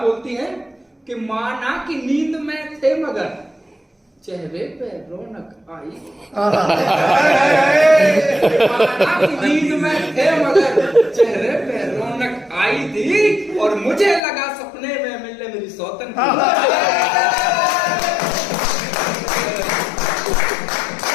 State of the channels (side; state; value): right; drops out; at 14.2 s